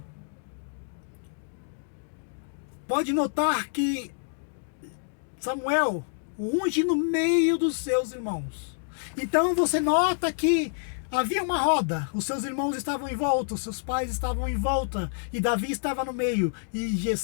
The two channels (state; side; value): silent; right; digital silence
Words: Pode notar que Samuel o unge no meio dos seus irmãos. Então você nota que havia uma roda, os seus irmãos estavam em volta, os seus pais estavam em volta, e Davi estava no meio, e